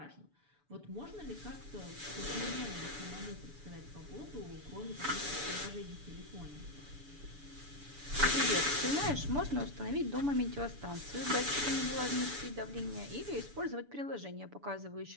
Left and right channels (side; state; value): left; late; 6.9 ms